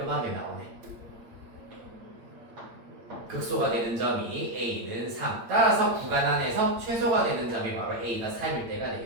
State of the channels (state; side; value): late; left; 8.8 ms